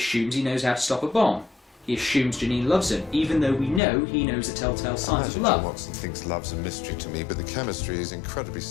he knows how to stop a bomb. He assumes Janine loves him, even though we know he knows the telltale signs of love. John Watson thinks love's a mystery to me, but the chemistry is incredibly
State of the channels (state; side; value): drops out; right; at 3.8 s